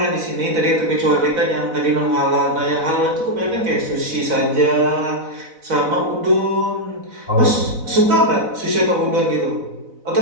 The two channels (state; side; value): late; left; 4.0 ms